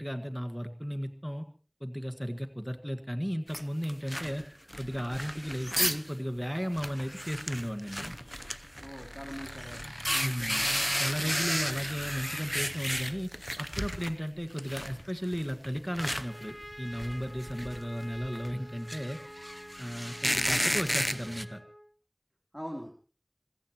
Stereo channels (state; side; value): identical; both; correlation 1.00